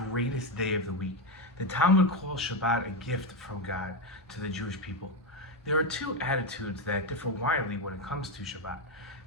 day of the week. The Talmud calls Shabbat a gift from God to the Jewish people. There are two attitudes that differ widely when it comes to Shabbat.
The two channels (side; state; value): both; normal; correlation 0.09